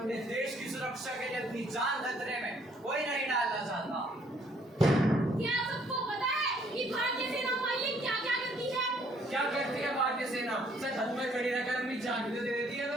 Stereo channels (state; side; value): normal; both; correlation 0.64